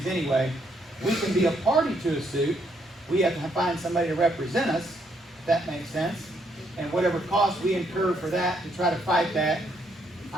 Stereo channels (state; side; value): normal; both; correlation 0.73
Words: anyway, we can be a party to a suit. We have to find somebody to represent us, if that makes sense. And whatever cost we incur for that, to try to fight that,